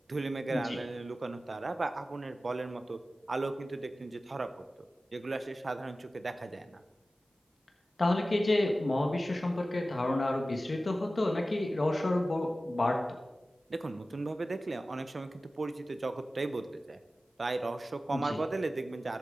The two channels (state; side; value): normal; both; correlation 0.95